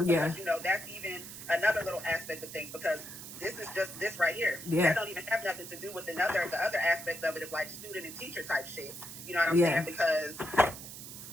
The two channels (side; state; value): right; noise; hiss, 12 dB below the sound